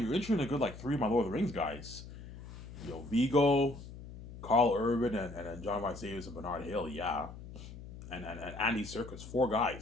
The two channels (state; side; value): noise; left; hum, 13 dB below the sound